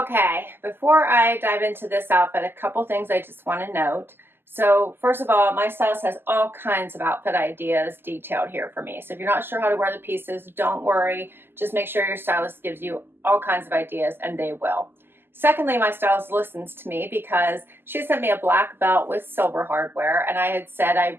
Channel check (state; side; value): late; left; 0.10 ms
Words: before I dive into this outfit, a couple things I just want to note. So first of all, my stylist has all kinds of outfit ideas detailed here for me. So if you're not sure how to wear the pieces, don't worry. Just make sure your stylist gives you all kinds of ideas, and they will. Secondly, my stylist listens to me because she sent me a black belt with silver hardware, and I had said